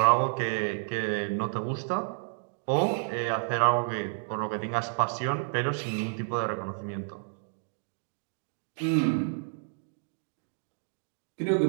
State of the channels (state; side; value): silent; left; digital silence